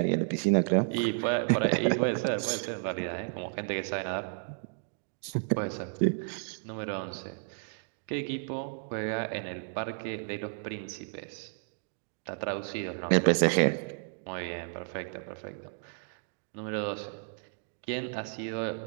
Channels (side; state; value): left; silent; digital silence